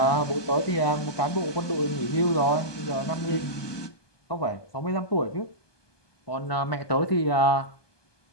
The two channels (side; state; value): right; late; 1.2 ms